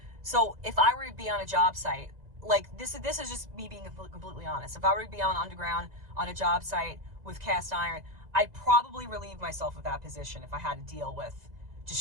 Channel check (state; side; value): late; left; 2.0 ms